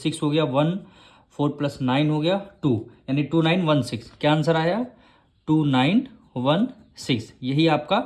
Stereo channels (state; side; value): identical; both; correlation 1.00